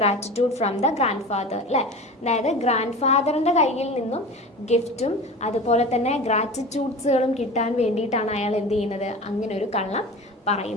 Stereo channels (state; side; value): normal; both; correlation 0.34